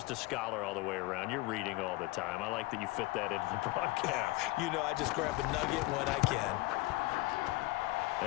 a scholar all the way around. You're reading all the time. I like that you fit that into the broadcast. You know, I just grab a nugget when I can.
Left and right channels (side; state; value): right; quieter; 20.1 dB